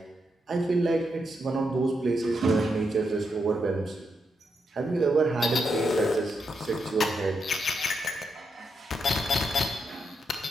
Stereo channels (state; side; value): normal; both; correlation 0.82